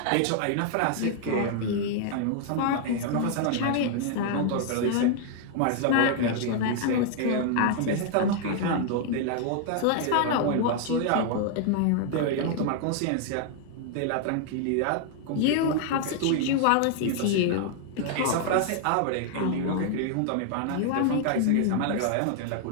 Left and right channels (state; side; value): different; both; correlation 0.00